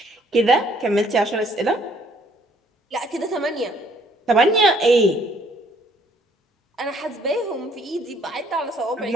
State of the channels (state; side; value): normal; both; correlation 0.63